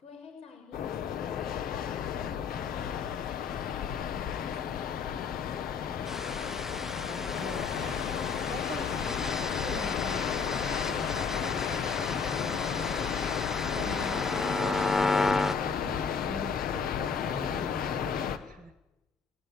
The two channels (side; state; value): right; quieter; 5.5 dB